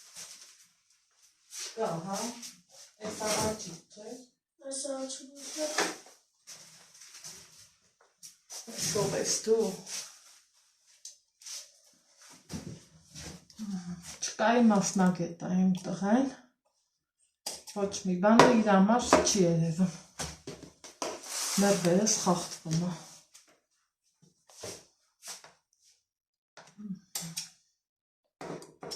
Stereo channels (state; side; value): identical; both; correlation 1.00